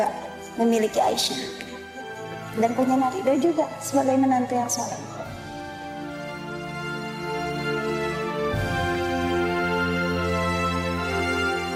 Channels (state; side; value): identical; both; correlation 1.00